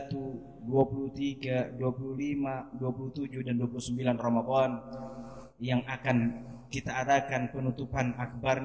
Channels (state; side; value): identical; both; correlation 1.00